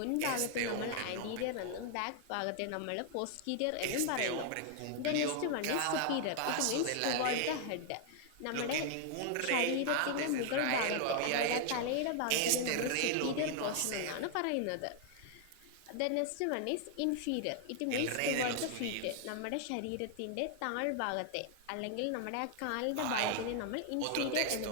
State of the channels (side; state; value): both; different; correlation 0.00